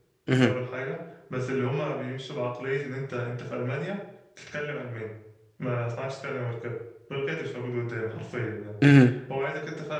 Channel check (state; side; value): identical; both; correlation 1.00